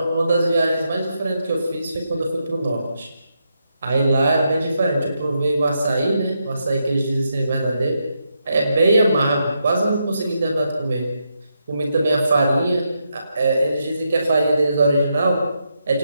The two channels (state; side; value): inverted; both; correlation -0.82